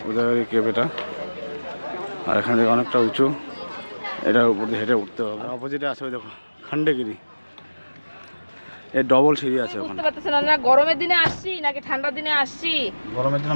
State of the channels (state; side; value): inverted; both; correlation -1.00